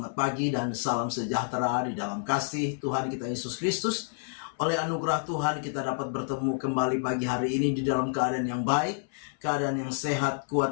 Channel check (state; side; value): silent; right; 59 dB below the other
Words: pagi dan salam sejahtera di dalam kasih Tuhan kita Yesus Kristus. Oleh anugerah Tuhan kita dapat bertemu kembali pagi hari ini di dalam keadaan yang baik, keadaan yang sehat,